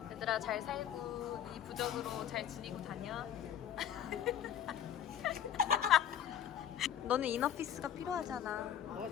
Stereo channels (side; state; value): right; quieter; 9.8 dB